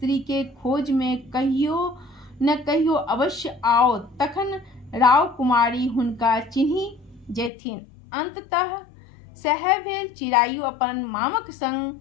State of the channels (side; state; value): right; drops out; at 7.5 s